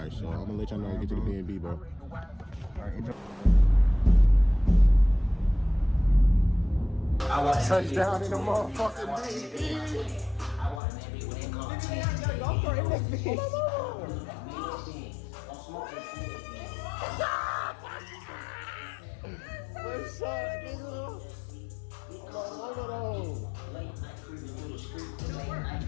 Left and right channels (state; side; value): drops out; right; at 10.8 s